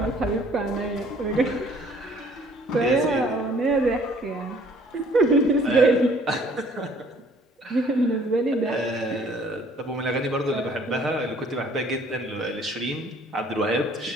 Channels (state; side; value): normal; both; correlation 0.58